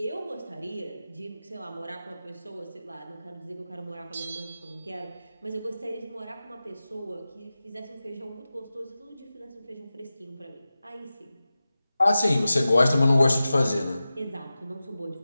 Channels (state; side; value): inverted; both; correlation -0.95